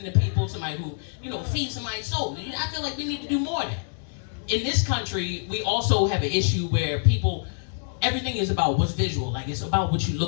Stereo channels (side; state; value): right; silent; digital silence